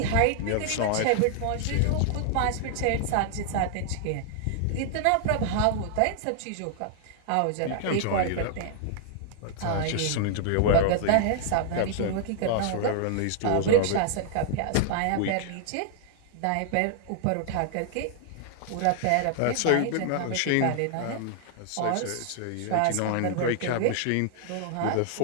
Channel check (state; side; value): different; both; correlation -0.01